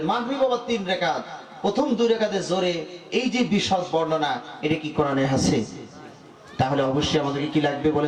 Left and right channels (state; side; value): identical; both; correlation 1.00